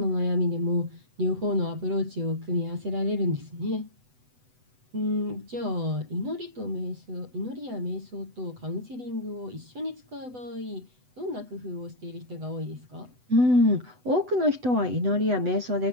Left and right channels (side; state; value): left; late; 8.0 ms